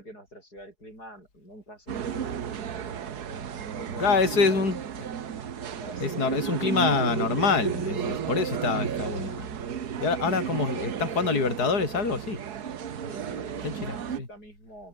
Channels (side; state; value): right; late; 4.7 ms